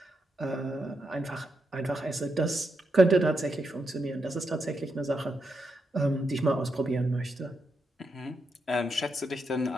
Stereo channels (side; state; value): both; normal; correlation 0.83